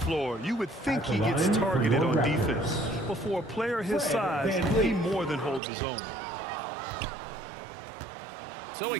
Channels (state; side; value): drops out; left; at 5.6 s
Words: you would think he gets targeted on defense. But for a player his size, he more than holds his own. So he